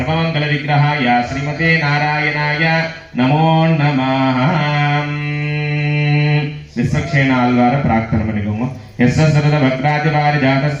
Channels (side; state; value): both; identical; correlation 1.00